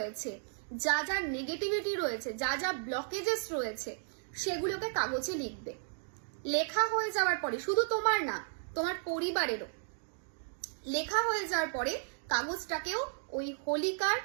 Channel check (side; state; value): left; silent; digital silence